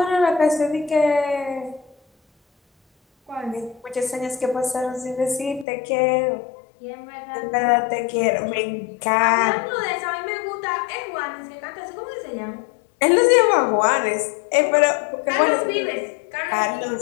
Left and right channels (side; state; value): right; drops out; at 5.7 s